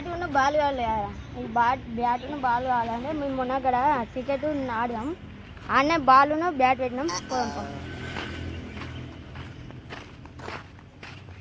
ఉన్న బాల్ కావాలి కదా, బ్యాట్ ఉన్న బాల్ కావాలంటే మేము మొన్న అక్కడ క్రికెట్ ఆడదాం. ఆడనే బాల్ బ్యాట్ పెట్టినాం. పోదాం.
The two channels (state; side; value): identical; both; correlation 1.00